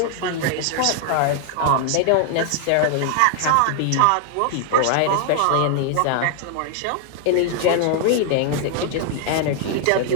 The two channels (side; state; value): both; different; correlation 0.00